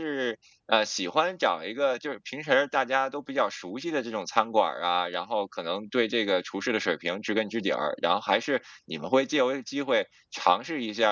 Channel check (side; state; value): both; identical; correlation 1.00